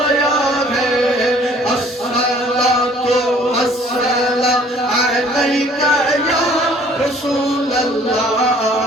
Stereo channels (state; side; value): normal; both; correlation 0.56